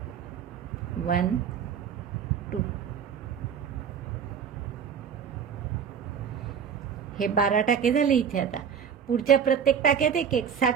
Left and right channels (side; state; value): left; quieter; 7.6 dB